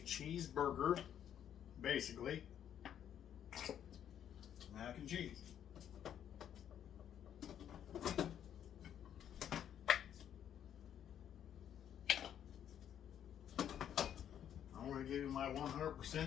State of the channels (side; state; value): right; quieter; 9.8 dB